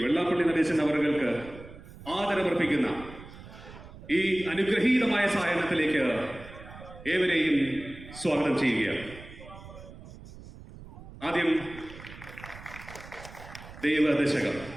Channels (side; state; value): right; noise; rumble, 16 dB below the sound